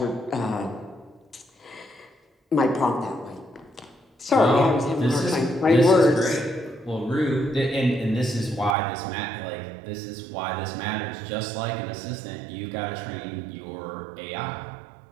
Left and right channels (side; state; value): left; drops out; at 8.8 s